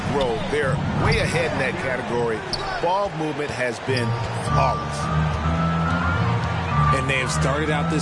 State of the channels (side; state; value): both; identical; correlation 1.00